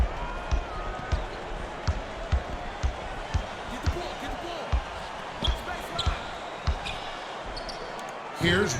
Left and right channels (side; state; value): both; identical; correlation 1.00